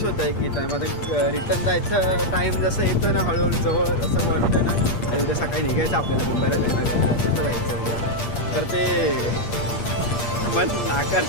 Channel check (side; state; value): right; late; 8.5 ms